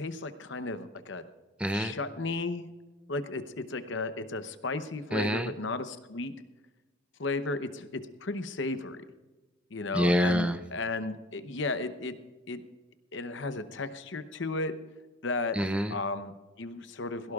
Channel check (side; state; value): both; normal; correlation 0.44